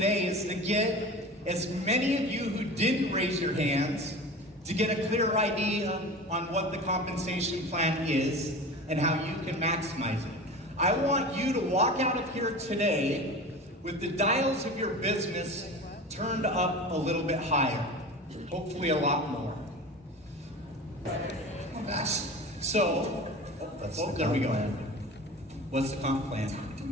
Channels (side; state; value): both; normal; correlation 0.34